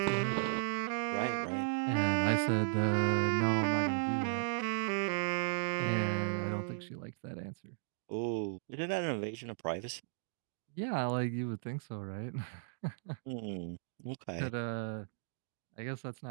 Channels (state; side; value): silent; left; digital silence